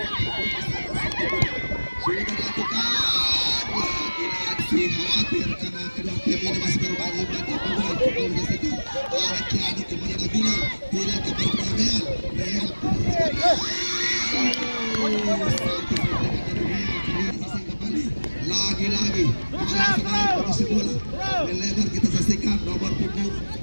sudah dilakukan lagi-lagi hampir karena kedua tim ini masih berbagi mantap bola kembali disaksikan arah kiri kepada Bilal. Bilal kembali kepada Real lagi-lagi posisi bola melebar kita saksikan nomor punggung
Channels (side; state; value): both; inverted; correlation -1.00